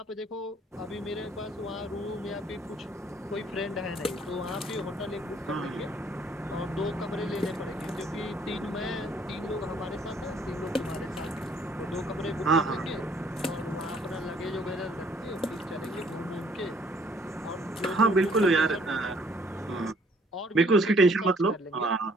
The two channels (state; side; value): normal; both; correlation 0.62